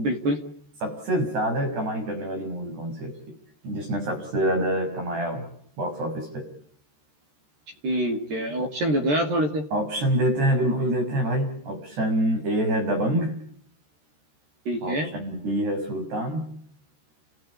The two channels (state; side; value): late; left; 13 ms